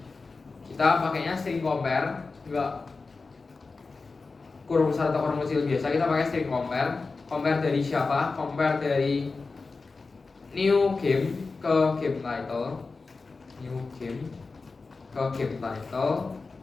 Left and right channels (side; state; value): right; quieter; 4.0 dB